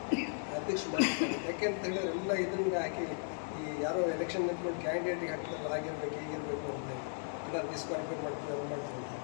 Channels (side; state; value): right; silent; digital silence